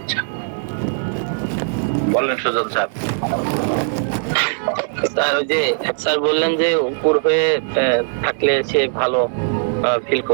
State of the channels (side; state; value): left; silent; 66 dB below the other